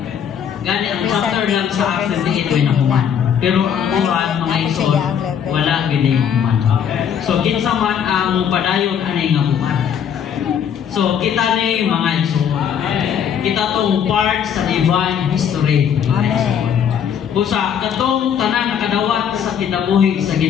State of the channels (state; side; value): quieter; right; 8.3 dB